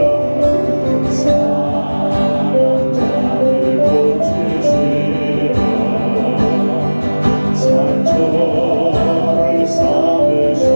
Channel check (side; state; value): both; inverted; correlation -1.00